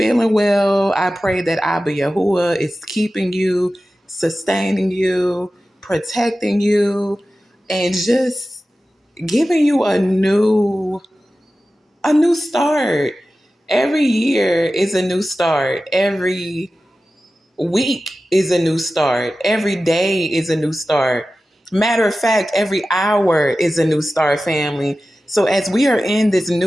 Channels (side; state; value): both; normal; correlation 0.95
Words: well. I pray that Abba Yahuwah is keeping you, sustaining you, protecting you, and just giving you a new start. Every year is a new start. Every week is a new start. Every day is a new start. Matter of fact, every hour is a new start, family. So as we are in this